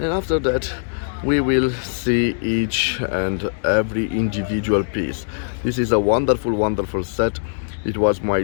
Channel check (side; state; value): right; silent; digital silence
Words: after that we will see each and every individual piece. This is a wonderful, wonderful set. It was my